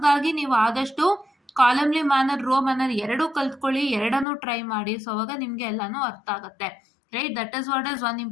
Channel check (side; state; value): right; drops out; at 4.2 s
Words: ನೀವು ಆದಷ್ಟು ಕಾಲಮ್ಲಿ ಮ್ಯಾನರ್, ರೋ ಮ್ಯಾನರ್ ಎರಡೂ ಕಲ್ತ್ಕೊಳ್ಳಿ, ಎರಡನ್ನೂ ಟ್ರೈ ಮಾಡಿ. ಸೊ ಅವಾಗ ನಿಮಗೆ ಎಲ್ಲನೂ ಅರ್ಥ ಆಗುತ್ತೆ. Right, that is what is one